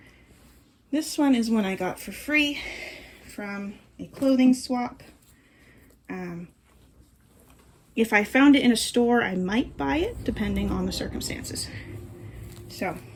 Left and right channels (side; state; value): both; identical; correlation 1.00